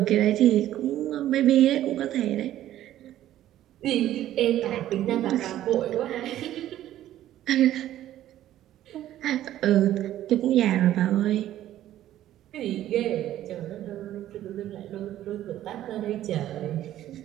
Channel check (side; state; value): left; quieter; 12.9 dB